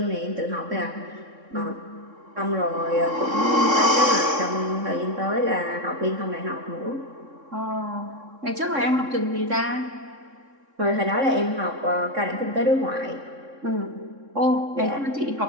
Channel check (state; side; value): late; left; 3.6 ms